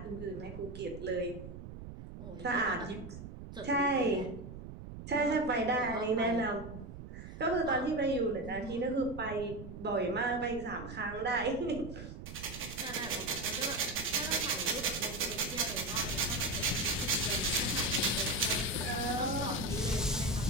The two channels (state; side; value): noise; right; rumble, 11 dB below the sound